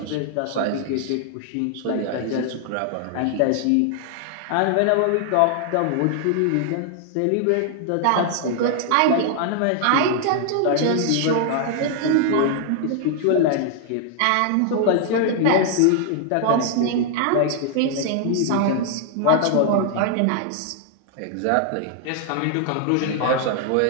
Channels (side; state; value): both; different; correlation 0.00